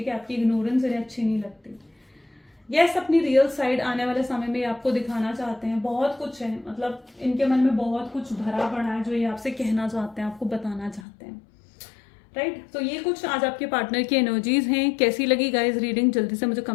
है, आपकी इग्नोरेंस इन्हें अच्छी नहीं लगती। यस, अपनी रियल साइड आने वाले समय में आपको दिखाना चाहते हैं। बहुत कुछ है, मतलब इनके मन में बहुत कुछ भरा पड़ा है जो ये आपसे कहना चाहते हैं, आपको बताना चाहते हैं, राइट। तो ये कुछ आज आपके पार्टनर की एनर्जीज हैं। कैसी लगी गाइस रीडिंग, जल्दी से मुझे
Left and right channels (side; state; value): right; drops out; at 11.0 s